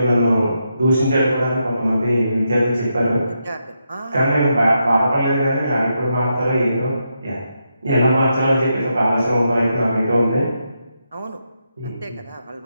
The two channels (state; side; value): inverted; both; correlation -0.83